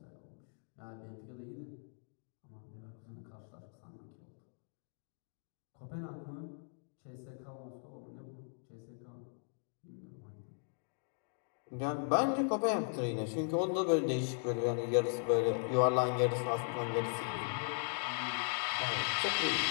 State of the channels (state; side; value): silent; right; digital silence